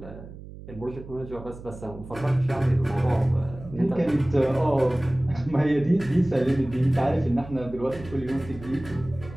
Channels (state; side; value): noise; right; hum, 15 dB below the sound